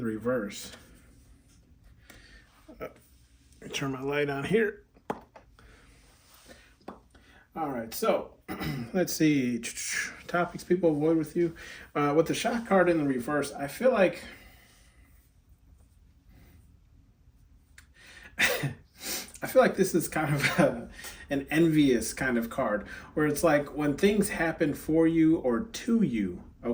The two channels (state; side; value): identical; both; correlation 1.00